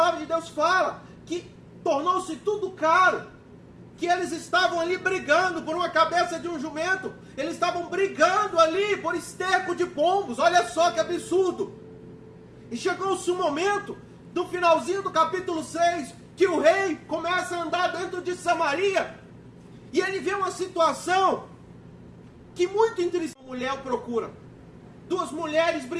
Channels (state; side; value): identical; both; correlation 1.00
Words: de Deus fala que tornou-se tudo caro, que eles estavam ali brigando por uma cabeça de um jumento, eles estavam brigando ali por esterco de pombos. Olha só que absurdo. E chegou-se um momento, no finalzinho do capítulo 6, que o rei começa a andar dentro de Samaria, e ele vê uma situação que muito interessante. Uma mulher o procura, duas mulheres